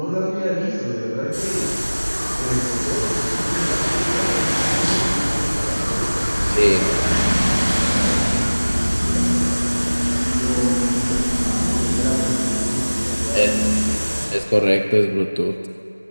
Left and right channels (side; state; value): both; inverted; correlation -1.00